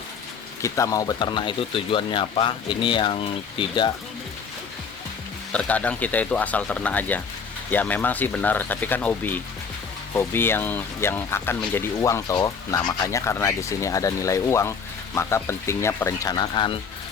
kita mau beternak itu tujuannya apa. Ini yang tidak, terkadang kita itu asal ternak aja ya, memang sih benar, tapi kan hobi yang akan menjadi uang toh. Nah makanya karena di sini ada nilai uang, maka pentingnya perencanaan,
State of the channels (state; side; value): quieter; right; 5.8 dB